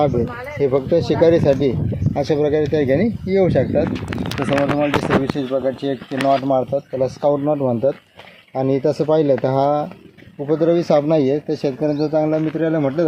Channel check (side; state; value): both; identical; correlation 1.00